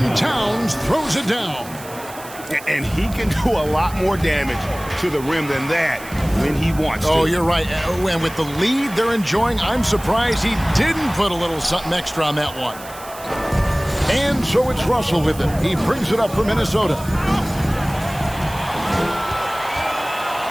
Towns throws it down. And he can do a lot more damage to the rim than that when he wants to. Oh, you're right. And with the lead they're enjoying, I'm surprised he didn't put a little something extra on that one. And so it's Russell with it. He brings it up for Minnesota.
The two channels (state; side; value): noise; right; hiss, 17 dB below the sound